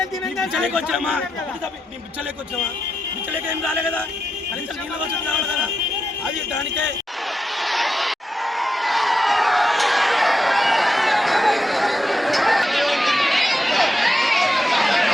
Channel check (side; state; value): both; normal; correlation 0.86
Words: వచ్చామా? మేము పిచ్చలేక వచ్చామా? పిచ్చలేక ఏం రాలే కదా, కనీసం నీళ్ళ వసతి కావాలి కదా. అది దానికే